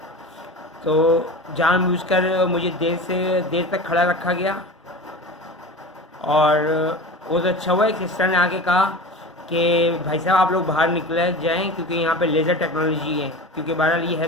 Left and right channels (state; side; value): normal; both; correlation 0.32